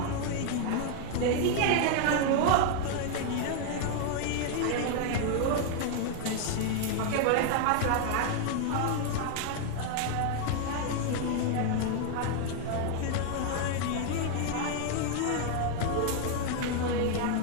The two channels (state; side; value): different; both; correlation 0.00